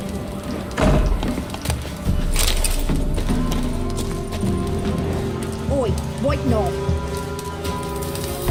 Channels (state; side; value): identical; both; correlation 1.00